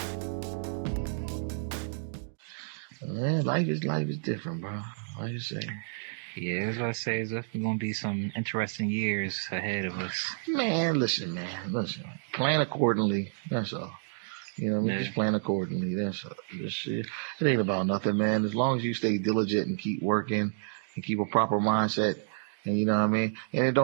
Man, life is different, bro. Like you say. Yeah, that's what I say. There's definitely gonna be some interesting years ahead of us. Man, listen. Plan accordingly. That's all. You know what I mean? Yeah. Just plan accordingly. That's all. It ain't about nothing, man. As long as you stay diligent and keep working and keep a proper mindset, and you know what I mean? And it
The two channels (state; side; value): silent; left; digital silence